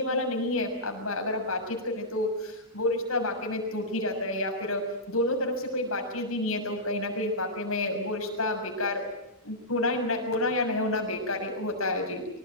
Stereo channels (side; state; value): both; normal; correlation -0.15